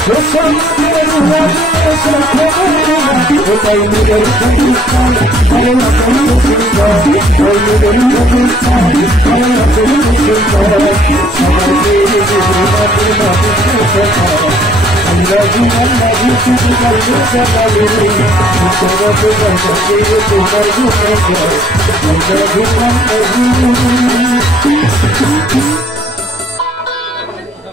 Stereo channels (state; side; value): normal; both; correlation 0.61